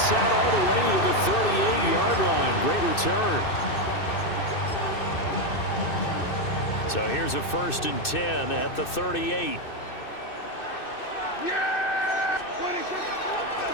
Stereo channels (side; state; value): right; late; 2.6 ms